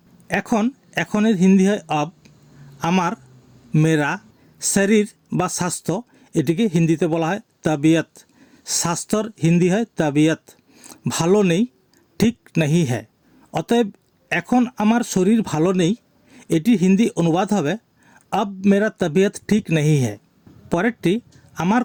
এখনের হিন্দি হয় अब, আমার, মেরা, শরীর বা স্বাস্থ্য, এটিকে হিন্দিতে বলা হয় তবিয়ত। স্বাস্থ্যর হিন্দি হয় তবিয়ত। ভালো নেই, ঠিক নাহি হ্যায়। অতএব এখন আমার শরীর ভালো নেই, এটি হিন্দি অনুবাদ হবে अब मेरा तबीयत ठीक नहीं है। পরেরটি আমার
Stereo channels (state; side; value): identical; both; correlation 1.00